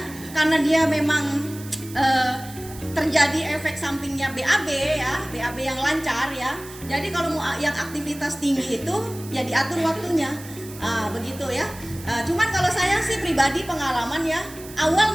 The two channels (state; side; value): noise; right; hiss, 17 dB below the sound